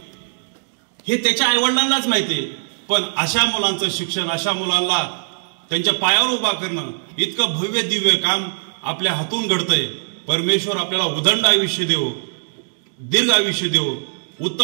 हे त्याच्या आई वडिलांनाच माहितीये, पण अशा मुलांचं शिक्षण, अशा मुलांना त्यांच्या पायावर उभा करणं इतकं भव्य दिव्य काम आपल्या हातून घडतंय। परमेश्वर आपल्याला उदंड आयुष्य देवो, दीर्घ आयुष्य देवो,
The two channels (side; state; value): left; silent; digital silence